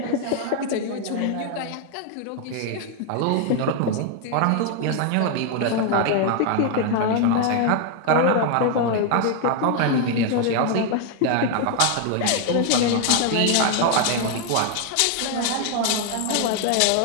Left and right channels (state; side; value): different; both; correlation 0.00